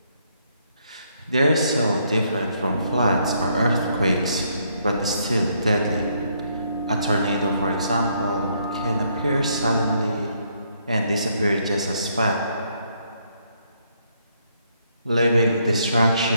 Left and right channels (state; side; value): inverted; both; correlation -0.72